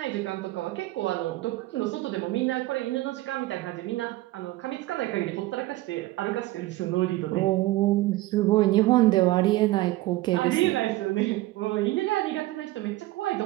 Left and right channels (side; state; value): left; quieter; 17.6 dB